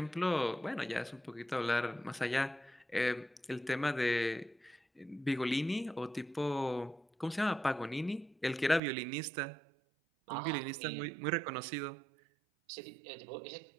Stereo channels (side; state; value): left; drops out; at 8.8 s